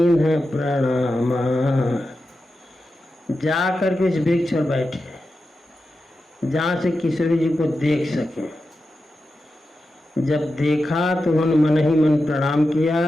प्रणामा। जा करके उस वृक्ष पर बैठे जहाँ से किशोरी जी को देख सके। जब देखा तो उन्होंने मन ही मन प्रणाम किया,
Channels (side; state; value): both; normal; correlation 0.90